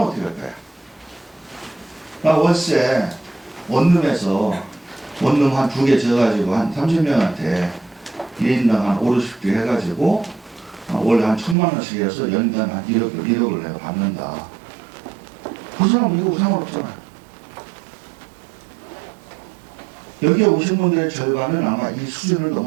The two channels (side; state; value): left; drops out; at 11.6 s